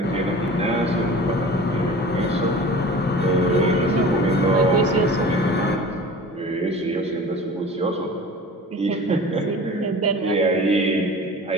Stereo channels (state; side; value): normal; both; correlation 0.39